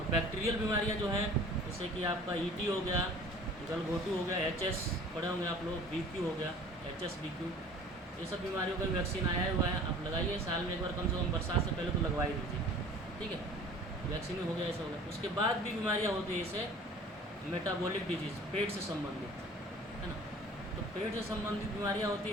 बैक्टीरियल बीमारियाँ जो हैं जैसे कि आपका ईटी हो गया, गलघोटू हो गया, एचएस पढ़े होंगे आप लोग, बीक्यू हो गया, एचएस बीक्यू, ये सब बीमारियों का वैक्सीन आया हुआ है। आप लगाइए साल में एक बार, कम से कम बरसात से पहले तो लगवा ही दीजिए, ठीक है। वैक्सीन हो गया, ऐसा हो गया। उसके बाद भी बीमारियाँ होती है, जैसे मेटाबॉलिक डिजीज़, पेट से संबंधित, है ना। तो पेट से संबंधित बीमारियाँ होती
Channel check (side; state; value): both; normal; correlation 0.47